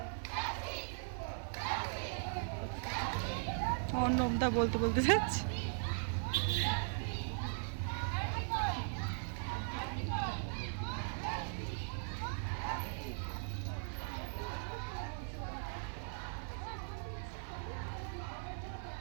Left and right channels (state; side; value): silent; left; digital silence